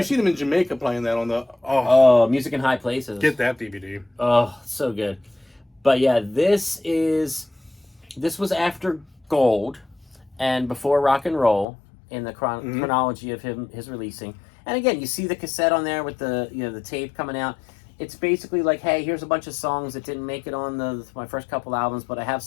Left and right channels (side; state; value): right; drops out; at 11.7 s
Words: seen him in Jamaica playing that on the. Oh, Music in High Places. Get that DVD. Oh, so good. But yeah, this was after Gold and before Rock and Roll in the chronology of his releasing. And again, you see the cassette on there with the the tape coming out. It's basically like, hey, here's a bunch of songs that didn't make it on my first couple albums, but I have